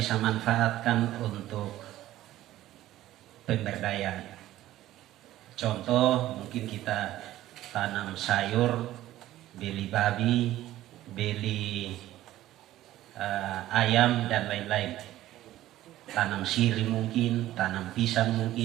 manfaatkan untuk pemberdayaan. Contoh, mungkin kita tanam sayur, beli babi, beli ayam dan lain-lain. Tanam siri mungkin, tanam pisang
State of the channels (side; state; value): left; quieter; 14.5 dB